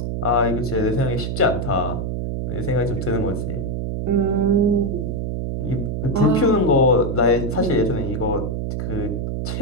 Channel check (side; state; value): right; noise; hum, 3 dB below the sound